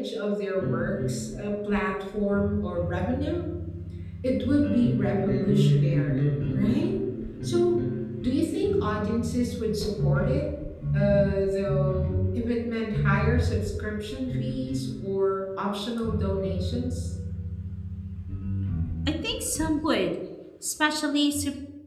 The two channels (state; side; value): identical; both; correlation 1.00